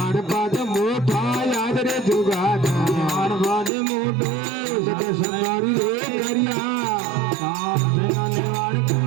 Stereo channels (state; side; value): drops out; left; at 3.7 s